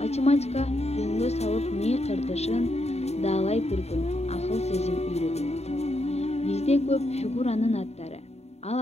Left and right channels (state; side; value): late; right; 0.31 ms